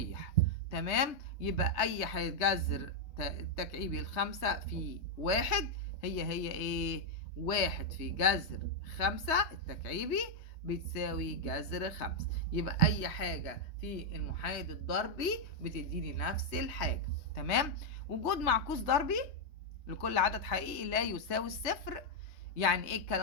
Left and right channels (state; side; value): late; right; 3.3 ms